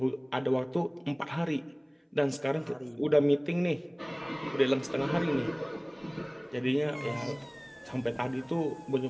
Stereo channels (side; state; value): both; identical; correlation 1.00